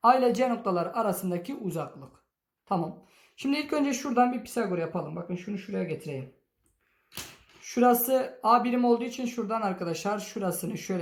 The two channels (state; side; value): identical; both; correlation 1.00